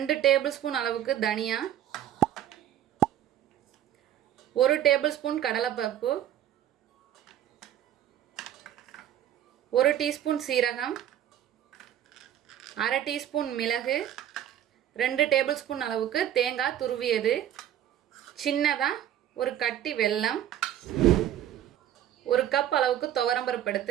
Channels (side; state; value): left; quieter; 11.2 dB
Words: டேபிள் ஸ்பூன் அளவுக்கு தனியா, 1 டேபிள் ஸ்பூன் கடலைப்பருப்பு, 1 டீஸ்பூன் சீரகம், அரை டீஸ்பூன் மிளகு, 2 டேபிள் ஸ்பூன் அளவுக்கு தேங்காய் துருவியது, சின்னதாக ஒரு கட்டி வெல்லம், 1 கப் அளவுக்கு துவரம்பருப்பு